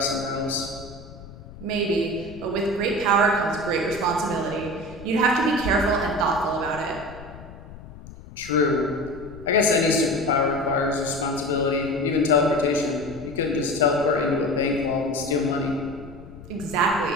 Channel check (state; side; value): noise; left; rumble, 17 dB below the sound